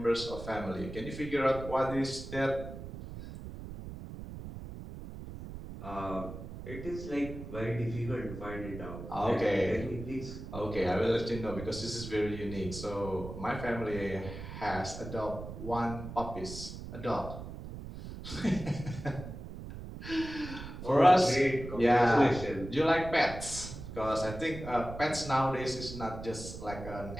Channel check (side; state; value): right; noise; rumble, 10 dB below the sound